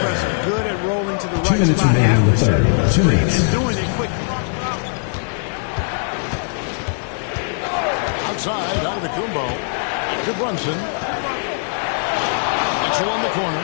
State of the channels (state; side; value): silent; right; 66 dB below the other